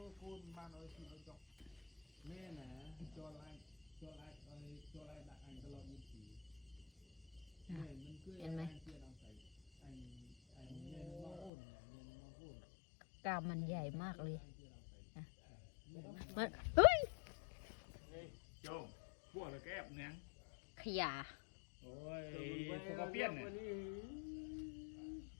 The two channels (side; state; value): right; drops out; at 11.5 s